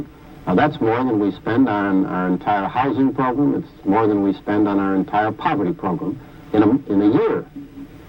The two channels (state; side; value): identical; both; correlation 1.00